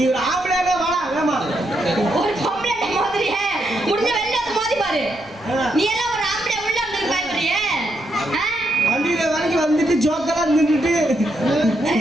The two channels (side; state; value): both; normal; correlation 0.79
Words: ஒரு ஆம்பளையானே வாடா வேமா. ஒரு பொம்பளை மாதிரியே முடிஞ்ச வெளில வந்து மோதி பாரு. நீ எல்லாம் ஒரு ஆம்பளை உள்ள வந்து பயப்படுறியே? வண்டியில வரைக்கும் வந்துட்டு ஜோக்கெல்லாம் நின்றுட்டு